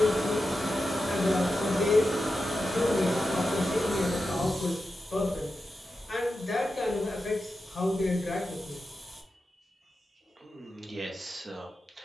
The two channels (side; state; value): both; normal; correlation 0.90